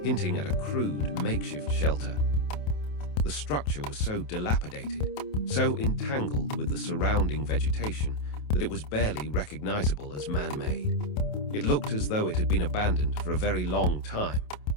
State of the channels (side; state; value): right; late; 28 ms